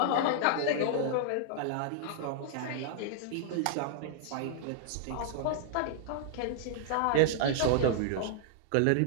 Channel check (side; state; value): both; different; correlation -0.01